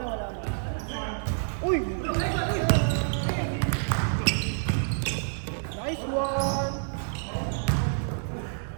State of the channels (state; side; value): silent; left; 56 dB below the other